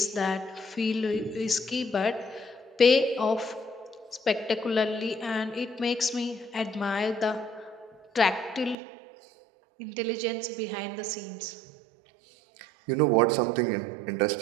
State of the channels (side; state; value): left; drops out; at 8.8 s